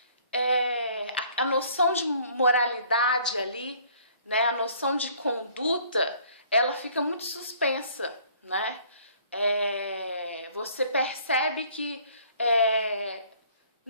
a noção de moralidade ali, né? A noção de conduta, ela fica muito suspensa, né? Você percebe que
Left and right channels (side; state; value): both; inverted; correlation -0.57